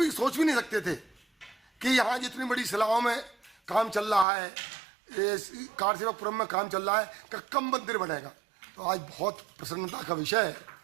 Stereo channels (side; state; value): left; drops out; at 4.2 s